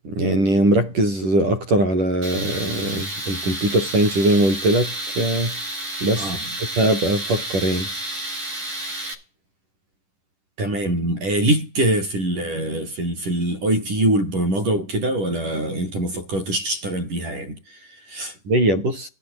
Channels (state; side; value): late; left; 10 ms